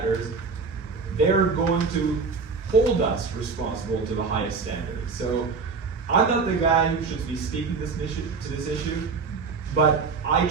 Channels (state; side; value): quieter; left; 4.8 dB